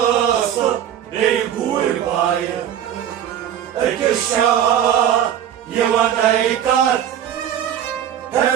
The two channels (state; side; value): quieter; left; 10.2 dB